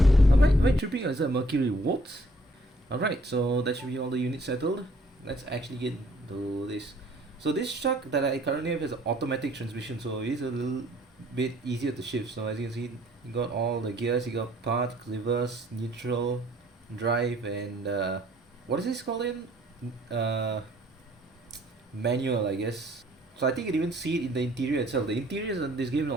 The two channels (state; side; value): normal; both; correlation 0.61